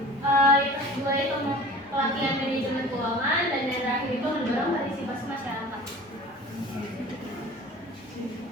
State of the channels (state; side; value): normal; both; correlation 0.41